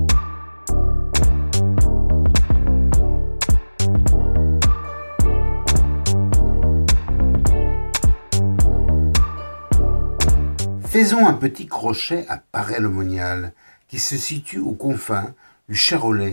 Faisons un petit crochet à Paray-le-Monial, qui se situe aux confins du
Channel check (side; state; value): both; inverted; correlation -1.00